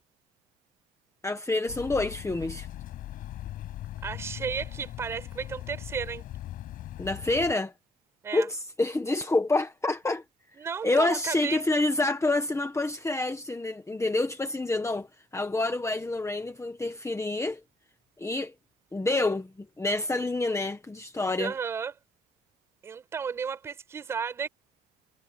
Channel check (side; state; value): both; normal; correlation 0.69